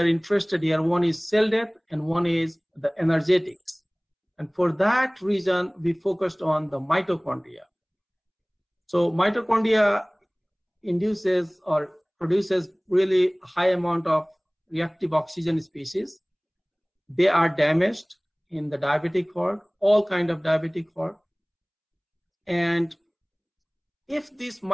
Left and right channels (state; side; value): identical; both; correlation 1.00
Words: interested here, one is cell death and one is the energetics. And for that reason, we focused on the mitochondria. So mitochondria induces or produces really high amount of reactive oxygen species. They are damaged in the diabetic heart, all kind of diabetic heart. And if this